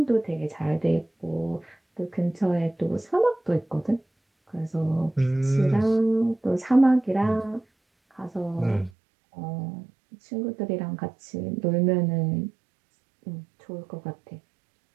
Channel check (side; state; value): left; drops out; at 8.9 s